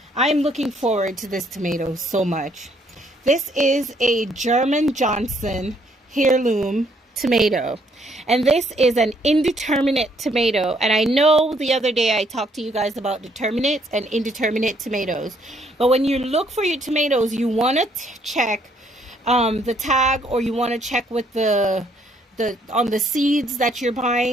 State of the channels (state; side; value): normal; both; correlation 0.68